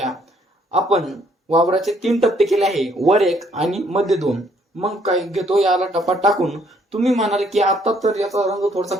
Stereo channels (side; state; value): both; normal; correlation 0.66